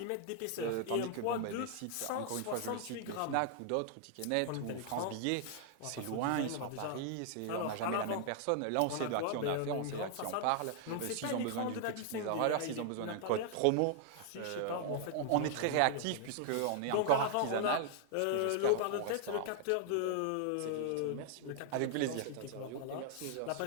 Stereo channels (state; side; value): different; both; correlation 0.00